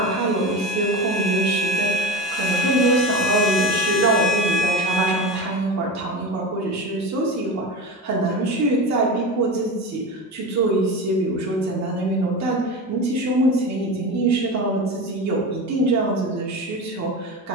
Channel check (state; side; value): normal; both; correlation 0.26